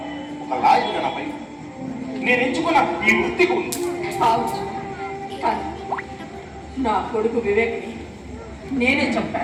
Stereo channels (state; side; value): identical; both; correlation 1.00